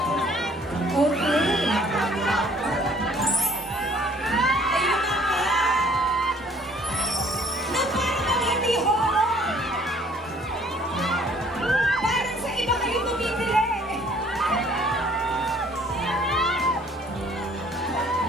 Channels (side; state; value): both; normal; correlation 0.57